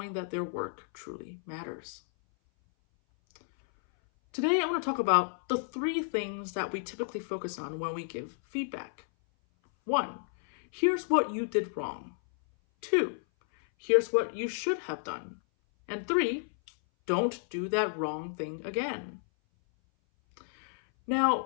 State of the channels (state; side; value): silent; right; 57 dB below the other